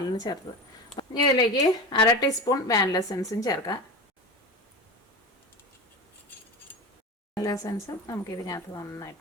ചേർത്തത്. ഇനി ഇതിലേക്ക് 1/2 ടീസ്പൂൺ വാനില എസൻസും ചേർക്കാം. വാനില എസൻസും നമുക്കിതിനകത്ത്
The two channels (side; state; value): both; normal; correlation 0.26